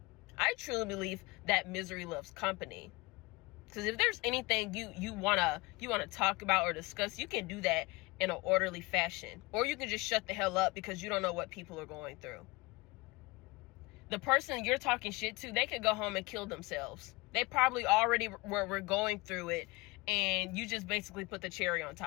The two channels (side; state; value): right; quieter; 24.0 dB